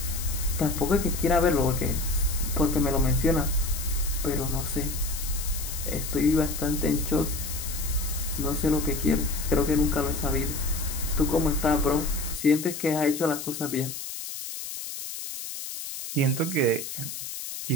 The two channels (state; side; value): noise; left; hiss, 8 dB below the sound